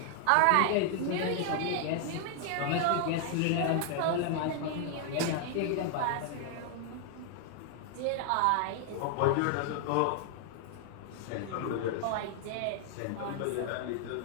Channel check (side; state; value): both; different; correlation 0.00